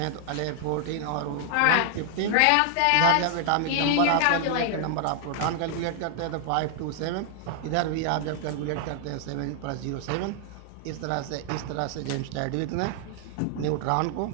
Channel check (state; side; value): different; both; correlation 0.00